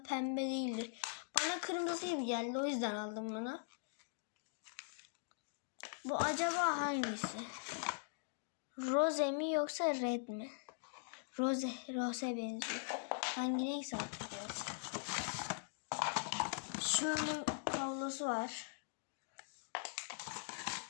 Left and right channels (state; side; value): silent; right; digital silence